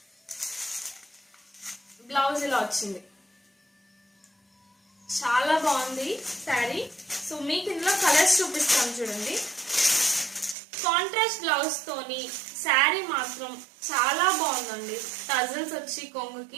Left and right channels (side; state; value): left; drops out; at 10.6 s